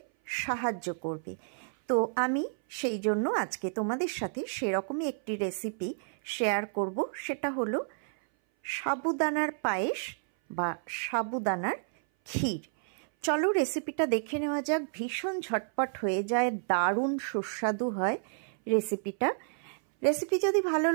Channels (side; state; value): left; silent; 57 dB below the other